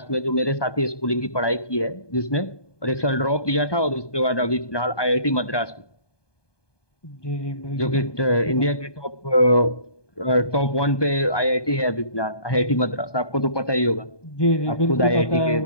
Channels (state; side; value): late; right; 1.2 ms